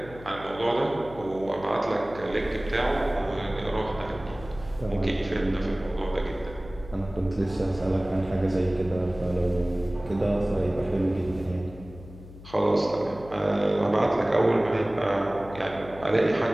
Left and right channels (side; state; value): left; noise; hum, 17 dB below the sound